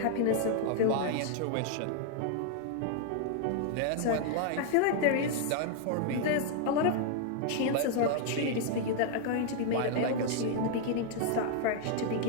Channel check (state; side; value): different; both; correlation 0.00